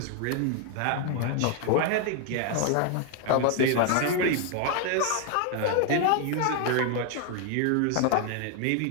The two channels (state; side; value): different; both; correlation 0.00